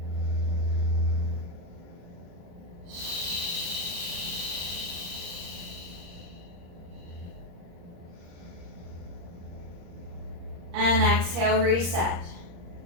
And exhale, reset.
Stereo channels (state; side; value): late; left; 35 ms